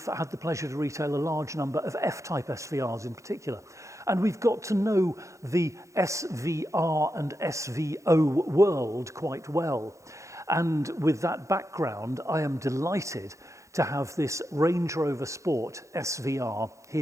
had the pleasure to retail a large number of F-type SVRs in particular. And we've got to know the SVR and SVO world quite well. And with that background, I am delighted to have this Range Rover Sport SVR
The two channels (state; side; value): late; left; 0.15 ms